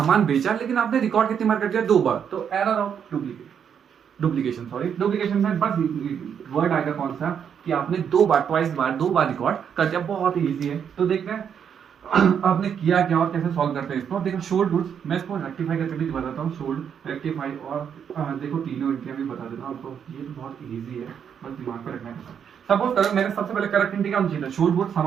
बेचा, लेकिन आपने रिकॉर्ड कितनी बार कर दिया, दो बार, तो error of duplication, sorry duplication में बस वर्ड आएगा कौन सा कि आपने दो बार रिकॉर्ड कर दिया। बहुत ही ईजी है। तो देखते हैं आपने किया क्या और कैसे सॉल्व करते हैं इसको। देखो शोल्ड गुड्स, मैं इसको रेक्टिफाई करके भी बताता हूँ। शोल्ड, रेक्टिफाई और देखो तीनों इंटियां भी बता देता हूँ आपको। ये तो बहुत इजी है, बस दिमाग पे रखना है। सपोज करो मैंने सबसे पहले करेक्ट एंट्री क्या होनी चाहिए? शोल्ड गुड्स,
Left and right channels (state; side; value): quieter; left; 7.9 dB